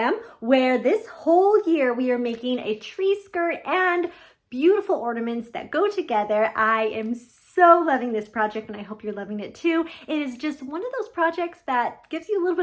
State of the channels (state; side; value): identical; both; correlation 1.00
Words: where this whole year we are making a tree skirt and beautiful ornaments that go together. I am so loving this project and I hope you're loving it too. It is just one of those projects that gives you a little